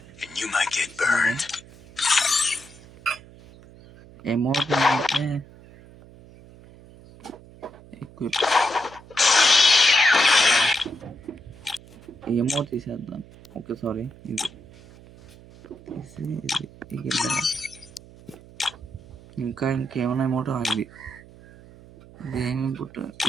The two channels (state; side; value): noise; right; hum, 21 dB below the sound